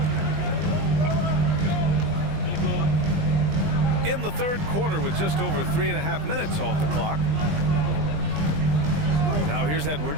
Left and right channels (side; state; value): left; late; 20 ms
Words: In the third quarter with just over 3.5 minutes off the clock. Now here's